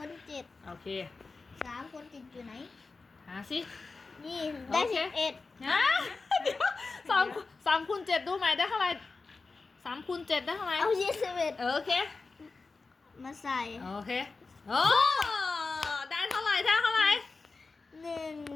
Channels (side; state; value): right; quieter; 4.0 dB